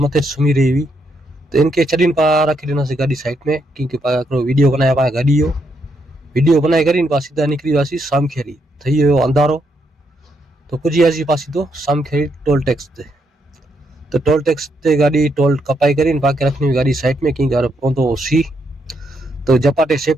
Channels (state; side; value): normal; both; correlation 0.77